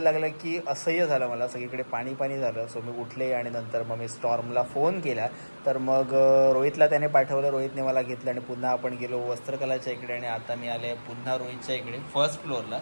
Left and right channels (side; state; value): both; inverted; correlation -1.00